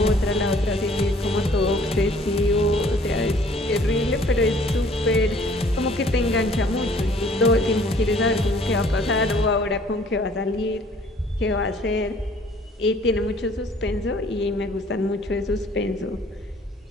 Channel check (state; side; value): normal; both; correlation 0.56